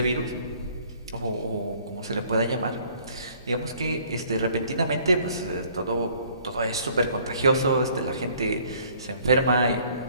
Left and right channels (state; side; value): inverted; both; correlation -0.58